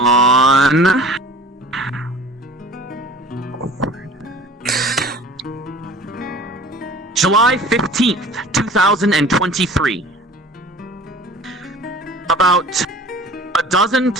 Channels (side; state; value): both; normal; correlation 0.44